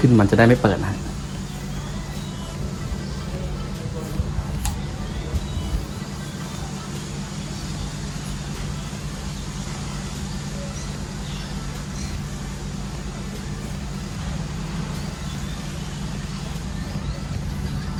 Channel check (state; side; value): identical; both; correlation 1.00